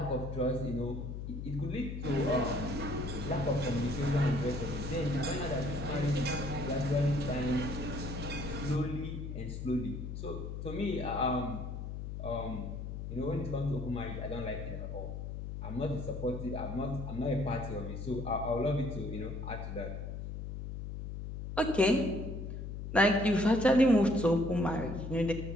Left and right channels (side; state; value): left; noise; hum, 6 dB below the sound